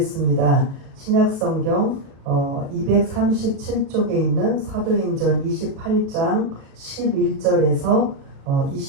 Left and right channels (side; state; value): left; late; 37 ms